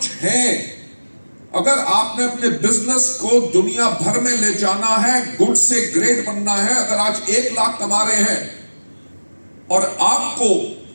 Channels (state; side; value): inverted; both; correlation -1.00